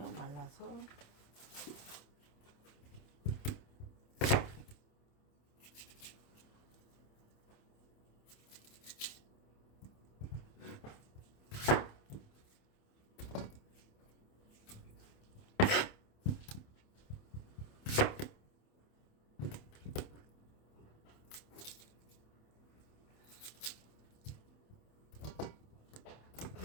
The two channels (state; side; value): late; right; 27 ms